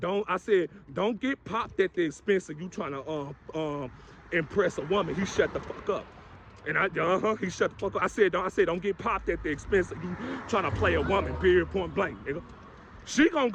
get popped at the expense of you trying to impress a woman. He shut the fuck up. And he shut the fuck up. I said, don't get popped at the expense of you trying to play a woman, period, point blank, nigga. She gonna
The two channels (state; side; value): identical; both; correlation 1.00